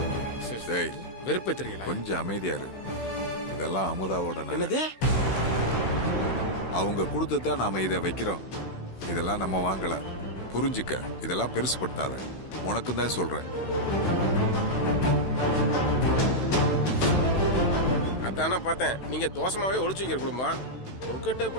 டேய், வெறுப்பே தெரியல. கொஞ்சம் அமைதியா இரு. இதெல்லாம் அமுதாவோட நகை. என்னது? அவங்க கொடுத்துதான் நாம இதை வைக்கிறோம். இதெல்லாம் நம்ம வாங்கல, புரிஞ்சுக்க. இதெல்லாம் பெருசுப்படுத்தாத, உனக்கு தான் சொல்றேன். அதானே பார்த்தேன் நீங்க தோசமாவே ஒளிச்சு வைக்கிற குடும்பம். உங்ககிட்ட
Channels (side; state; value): right; late; 16 ms